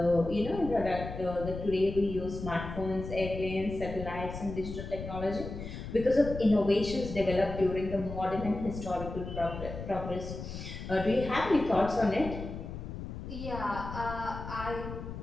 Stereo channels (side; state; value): left; noise; rumble, 8 dB below the sound